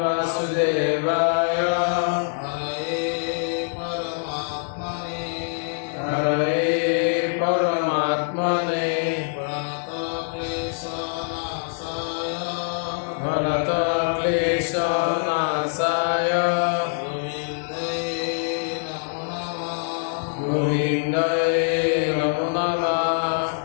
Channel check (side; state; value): right; silent; 59 dB below the other